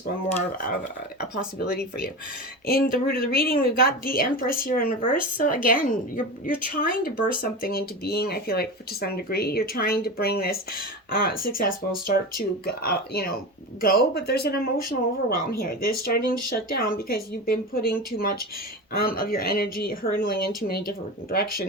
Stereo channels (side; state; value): both; normal; correlation 0.25